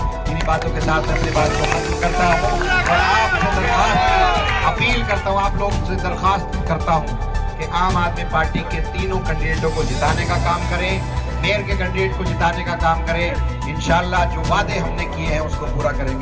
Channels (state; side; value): identical; both; correlation 1.00